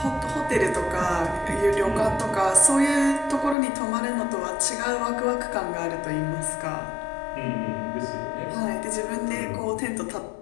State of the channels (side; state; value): right; drops out; at 3.6 s